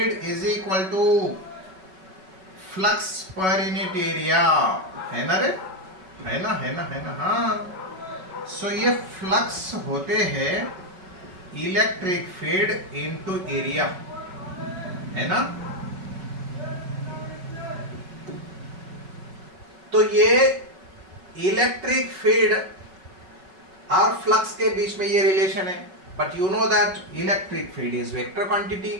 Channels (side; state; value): left; late; 5.3 ms